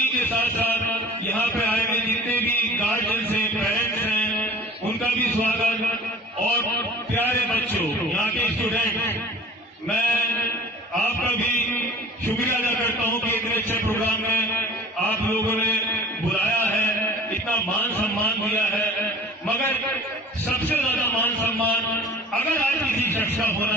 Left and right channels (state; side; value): normal; both; correlation 0.45